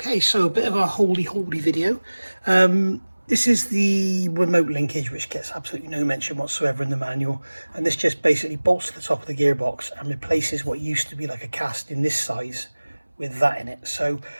so a bit of a holy video. This is the remote linkage, which gets absolutely no mention whatsoever in the manual. And this just basically bolts to the top of the gearbox and replaces what used to be like a cast in this size with that in it. So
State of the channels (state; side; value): inverted; both; correlation -1.00